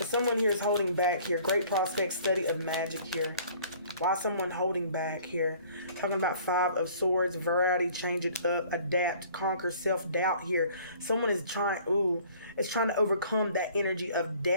someone here is holding back here. Great prospect, study of magic here. Why someone holding back here? Talking about 5 of Swords, variety, change it up, adapt, conquer self-doubt here. Someone is trying to overcome that energy of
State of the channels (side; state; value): both; inverted; correlation -0.53